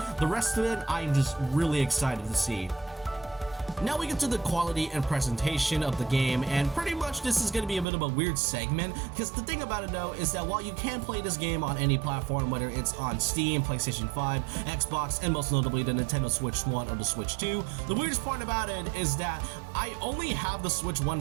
the rest of it I'm just really excited to see. Now we get to the quality and presentation of the game, and pretty much this is going to be a bit of a weird segment, because the thing about it though is that while you can play this game on any platform, whether it's on Steam, PlayStation 5, Xbox, and most notably the Nintendo Switch 1 or the Switch 2, the weirdest part about it is that I only have the Switch 1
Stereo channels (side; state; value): left; drops out; at 7.9 s